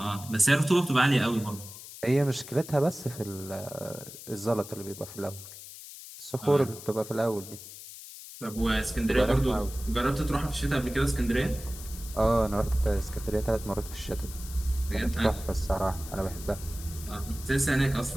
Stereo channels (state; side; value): noise; left; hiss, 14 dB below the sound